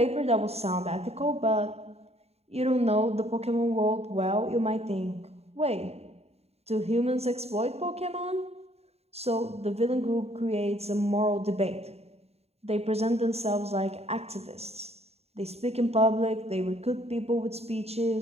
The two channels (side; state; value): left; late; 0.30 ms